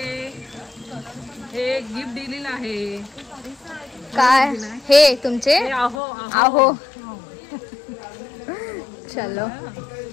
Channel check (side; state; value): right; drops out; at 6.0 s